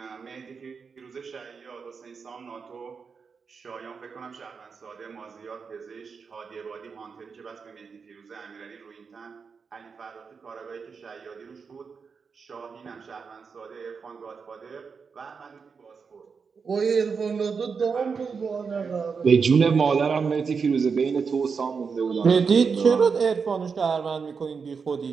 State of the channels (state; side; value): quieter; left; 5.5 dB